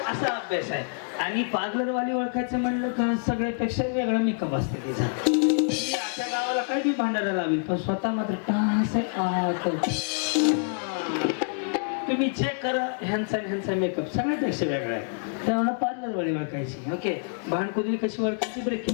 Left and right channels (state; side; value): silent; right; 60 dB below the other